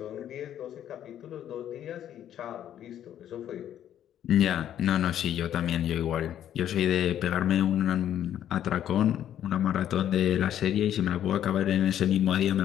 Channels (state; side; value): quieter; right; 10.8 dB